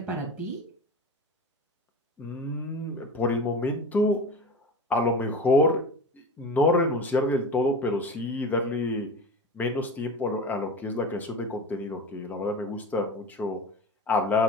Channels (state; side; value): normal; both; correlation 0.30